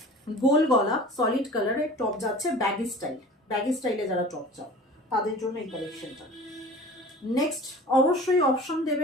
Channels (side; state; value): both; normal; correlation 0.41